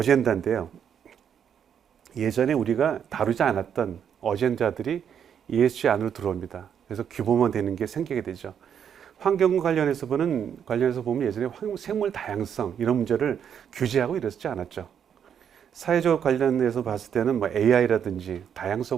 예전에 우리가 다루지 않았던 어젠다들이 ESG 안으로 들어옵니다. 그래서 규모만 되는 게 생기게 되죠. 환경 관련해서 보면 예전에 생물 다양성 이런 문제를 규제하고 이랬지 않았죠. 사회적 관련해서 봤을 때는 뭐 AI라든지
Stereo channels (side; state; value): left; quieter; 8.3 dB